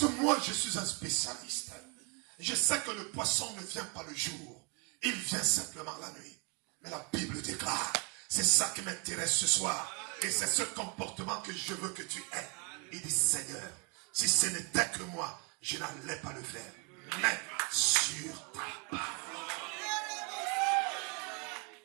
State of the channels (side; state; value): left; quieter; 33.8 dB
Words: que moi, je suis un spécialiste. Je sais que le poisson ne vient pas le jour. Il vient simplement la nuit. Mais la Bible déclare, c'est ça qui m'intéresse ce soir. Et c'est ce comportement que je veux que tu aies. Il dit, Seigneur, si ce n'était que moi, je n'allais pas le faire. Mais sur ta parole.